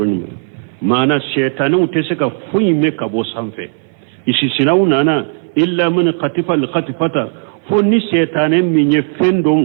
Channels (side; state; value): left; silent; 58 dB below the other